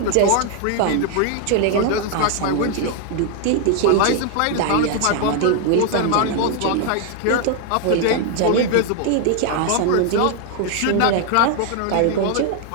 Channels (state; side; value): different; both; correlation 0.00